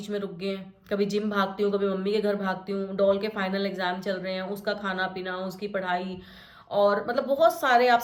में रुक गए हैं। कभी जिम भागती हूँ, कभी मम्मी के घर भागती हूँ, डॉल के फाइनल एग्जाम चल रहे हैं, उसका खाना पीना, उसकी पढ़ाई, और मतलब बहुत सारे, आप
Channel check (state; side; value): identical; both; correlation 1.00